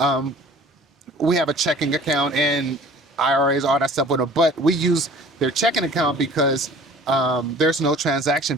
We have a checking account and IRAs, all that stuff with them, but we use their checking account because there's no transaction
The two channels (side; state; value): both; normal; correlation 0.47